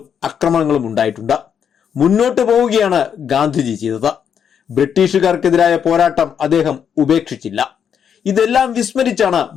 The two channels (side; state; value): right; quieter; 7.9 dB